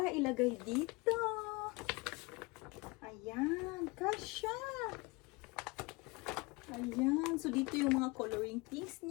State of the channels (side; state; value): right; quieter; 25.9 dB